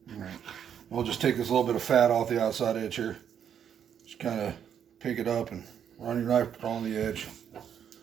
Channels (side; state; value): left; quieter; 8.6 dB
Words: Alright. We'll just take this little bit of fat off the outside edge here. Just kind of pick it up and run your knife on the edge.